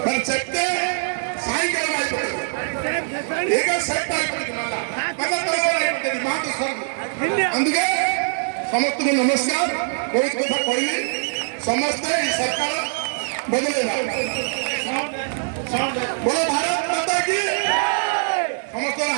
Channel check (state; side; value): silent; left; 64 dB below the other